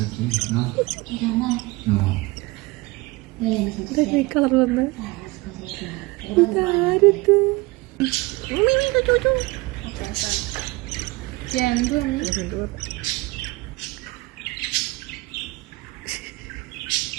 കളർ വന്ന് ഇതാരത് എന്ത്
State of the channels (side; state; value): left; quieter; 22.5 dB